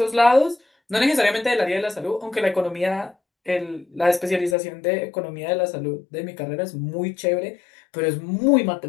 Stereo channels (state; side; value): drops out; right; at 4.5 s